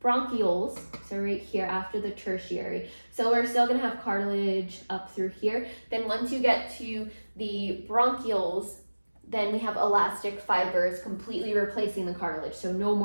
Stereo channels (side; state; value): both; inverted; correlation -1.00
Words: bronchioles, so right here after the tertiary, so we're still going to have cartilage up through here. Then once you get to the bronchioles, then we have elastic fibers completely replacing the cartilage. So no